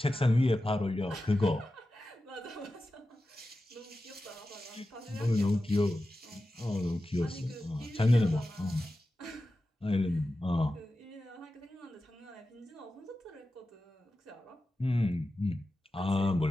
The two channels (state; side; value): normal; both; correlation 0.93